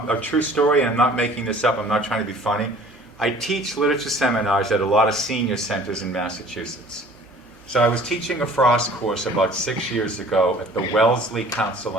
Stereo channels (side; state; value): both; normal; correlation 0.50